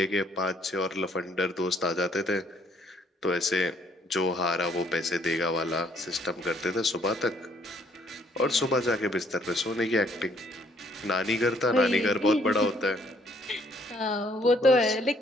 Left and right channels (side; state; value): both; normal; correlation 0.65